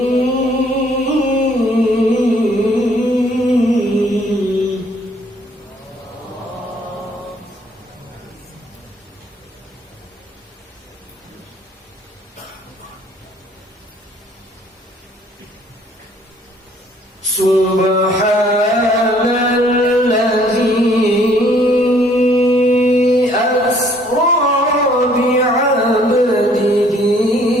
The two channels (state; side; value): normal; both; correlation 0.61